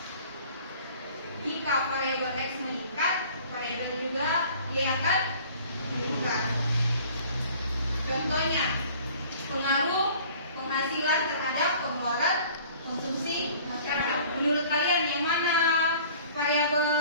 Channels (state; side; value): inverted; both; correlation -0.49